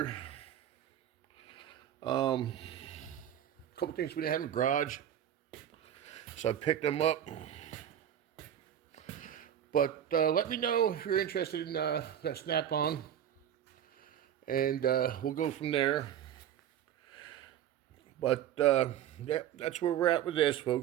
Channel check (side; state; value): left; quieter; 10.3 dB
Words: A couple things we didn't have in the garage, so I picked them up. But let me know if you're interested in that Snap-on, and we'll go from there. But yeah, that's where we're at with this,